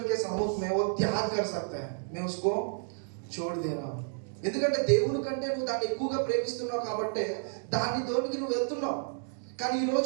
के सम्मुख में वो त्याग कर सकते हैं मैं उसको छोड़ दे रहा हूं ఎందుకంటే దేవుని కంటే నువ్వు దాన్ని ఎక్కువగా ప్రేమిస్తున్నావు కాబట్టి దాన్ని దోనికి నువ్వు వెళ్తున్నావు కానీ ఈ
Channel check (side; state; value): left; silent; 57 dB below the other